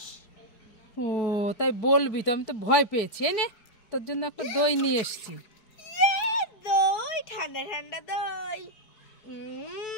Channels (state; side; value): late; right; 4.7 ms